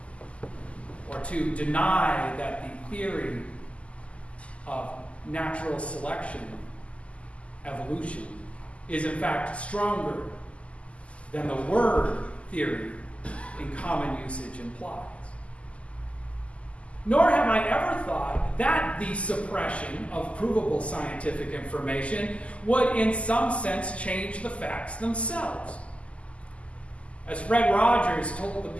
or to deny that the theory of natural selection, evolution, is in fact stronger than the word theory in common usage implies. Nor have I ever thought that the suppression of provable scientific information would in some sense change the facts themselves. As Fred Rogers told the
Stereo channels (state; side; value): late; right; 0.060 ms